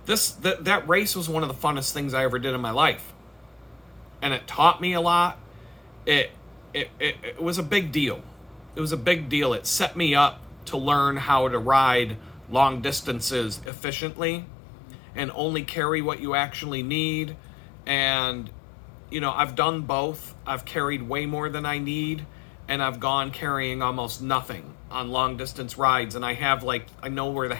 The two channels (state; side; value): drops out; right; at 13.7 s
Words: race was one of the funnest things I ever did in my life. And it taught me a lot. It was a big deal. It was a big deal. It set me up to learn how to ride long distances efficiently and only carry what you actually need. And I've done both. I've carried way more than I need, and I've gone carrying almost nothing on long distance rides, and I know where the